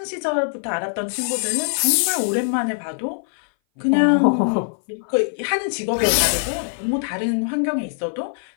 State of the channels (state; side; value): silent; right; 59 dB below the other